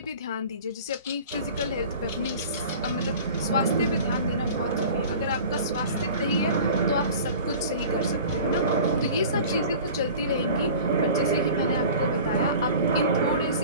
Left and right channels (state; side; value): inverted; both; correlation -0.41